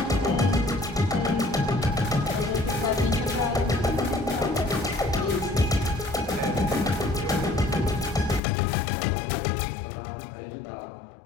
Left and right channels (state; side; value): drops out; right; at 8.4 s